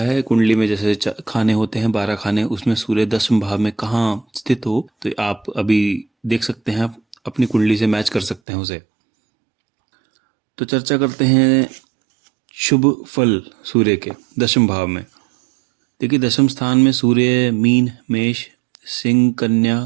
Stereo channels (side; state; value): left; drops out; at 8.4 s